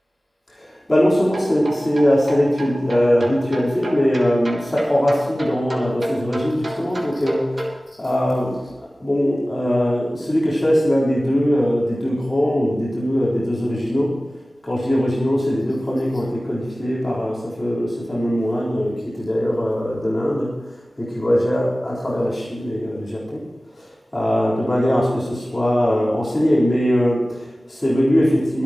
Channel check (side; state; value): both; normal; correlation 0.97